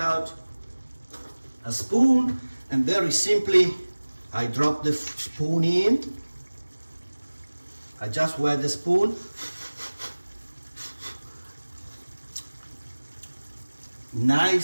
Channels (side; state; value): both; inverted; correlation -1.00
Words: a spoon and very simply I drop the spoon in. I just wet the spoon.